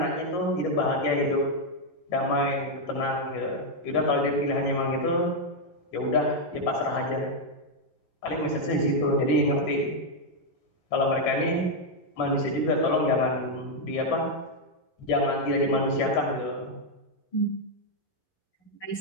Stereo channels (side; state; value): right; late; 12 ms